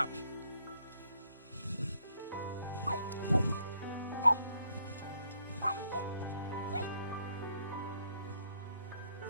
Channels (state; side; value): inverted; both; correlation -0.70